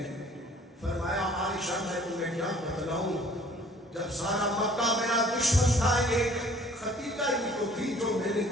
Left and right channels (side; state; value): both; normal; correlation 0.54